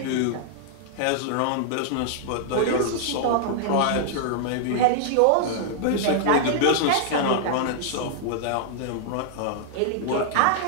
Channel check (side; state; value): both; different; correlation -0.01